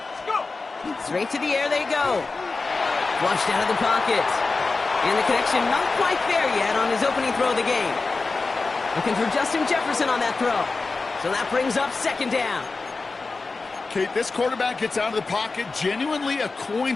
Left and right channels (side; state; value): right; quieter; 3.9 dB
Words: Let's go. Straight to the air they go. Flushed out of the pocket. And the connection not quite there yet on his opening throw of the game. Looking for Justin Jefferson on that throw. So that brings up 2nd down. Kate, this quarterback gets out of the pocket, genuinely a